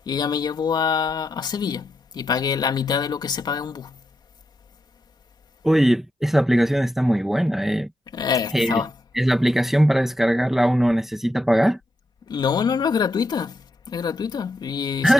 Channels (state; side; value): normal; both; correlation 0.84